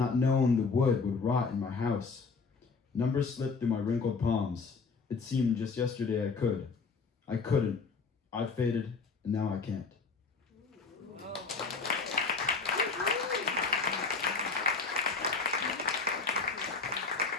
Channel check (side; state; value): right; quieter; 4.6 dB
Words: wood would rot in my house. Numbers slip through my wrinkled palms. It seemed just yesterday I couldn't. I faded, and now I can't.